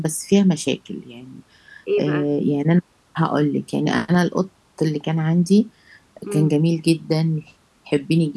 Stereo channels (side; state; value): both; identical; correlation 1.00